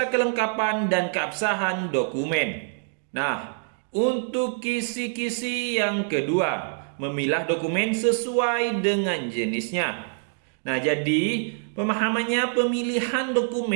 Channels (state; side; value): silent; left; 61 dB below the other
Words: kelengkapan dan keabsahan dokumen. Nah, untuk kisi-kisi yang kedua, memilah dokumen sesuai dengan jenisnya. Nah, jadi pemahamannya, pemilihan